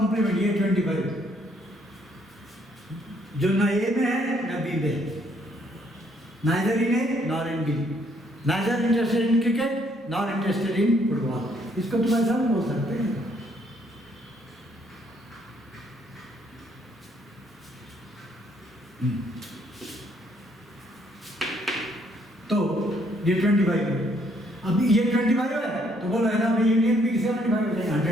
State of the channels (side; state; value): both; normal; correlation 0.68